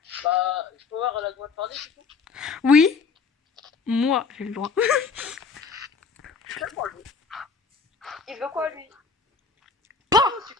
Bah, je peux voir, elle a le droit de parler, c'est tout. Oui. Moi, j'ai le droit. C'est moi, lui. Il veut quoi, lui? Pas. Oh,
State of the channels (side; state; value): right; quieter; 4.8 dB